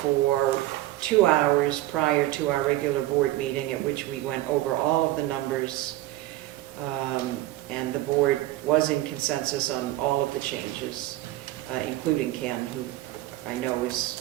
for 2 hours prior to our regular board meeting, at which we went over all of the numbers. And the board was in consensus on all of the changes, including Ken, who I know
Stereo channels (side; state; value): left; quieter; 16.1 dB